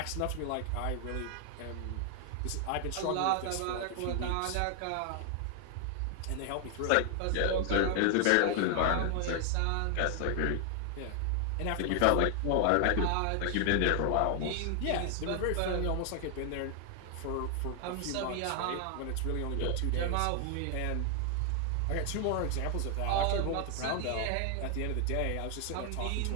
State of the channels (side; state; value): both; different; correlation 0.00